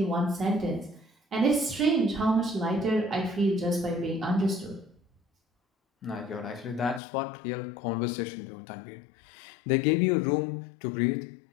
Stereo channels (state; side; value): drops out; right; at 7.0 s